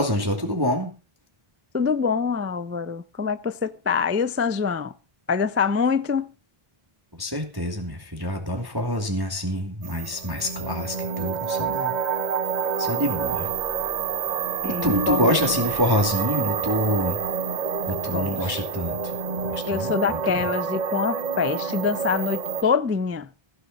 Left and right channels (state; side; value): late; left; 1.1 ms